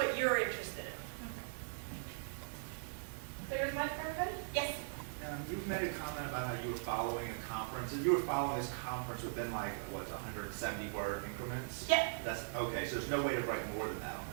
you're interested in. Clear as mud for everybody? Yes? You've made a comment about how you were following a conference, and you were following this conference within like, what, 170 word increments? Yeah. That's, okay, so there's no way to write more than that on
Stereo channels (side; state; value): left; silent; digital silence